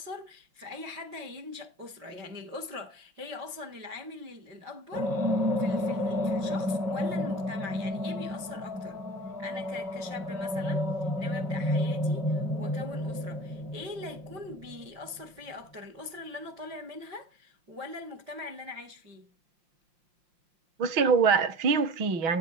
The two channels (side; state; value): left; late; 5.7 ms